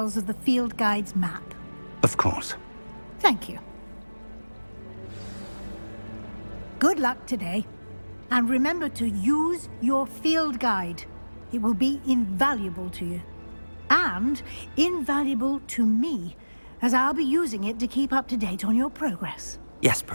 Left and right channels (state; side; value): inverted; both; correlation -1.00